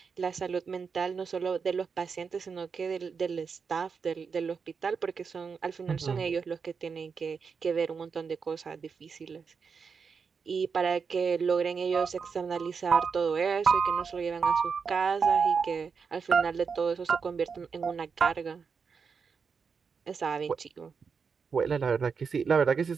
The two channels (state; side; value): quieter; left; 5.7 dB